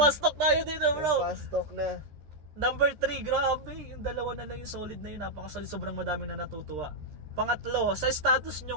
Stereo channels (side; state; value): left; late; 13 ms